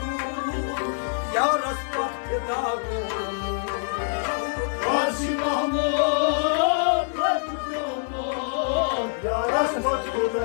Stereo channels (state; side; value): silent; right; 62 dB below the other